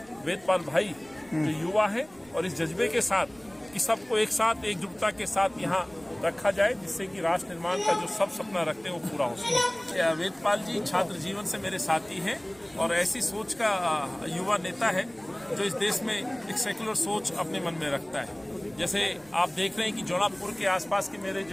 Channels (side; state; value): right; noise; rumble, 26 dB below the sound